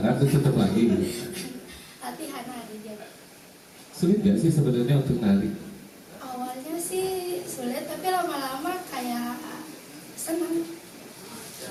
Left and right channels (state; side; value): identical; both; correlation 1.00